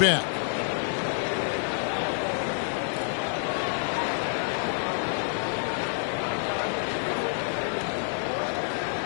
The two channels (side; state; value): right; silent; 57 dB below the other